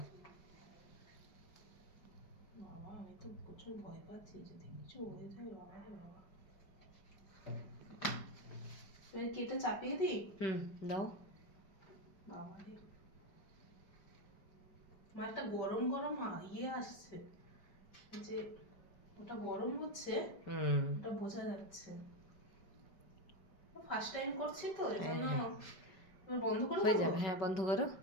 বাবা আমি তো প্রচুর ভয় পাচ্ছি, যদি কিছু হয়ে যায় বাবা রে বাবা। এবার কি এটা চাপিয়ে দিই? দাও। বাবা রে, মালটা গরম গরম ইয়ে আসছে, যে ওটা গরম হচ্ছে, ওটা বোঝা যাচ্ছে। ফার্স্ট টাইম করছি তো এই জন্য। এবার বন্ধ করে হয়ে দেবো? যাবে, হ্যাঁ বন্ধ করো।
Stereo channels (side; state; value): right; late; 5.1 ms